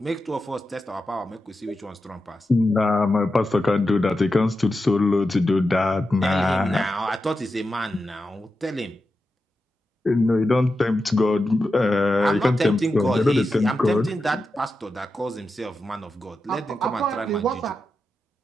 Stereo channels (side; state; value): both; normal; correlation 0.90